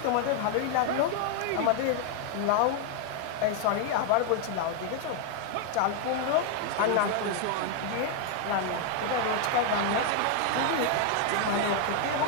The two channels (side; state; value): both; different; correlation 0.00